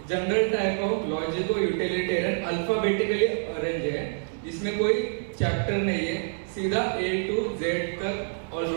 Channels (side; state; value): left; silent; digital silence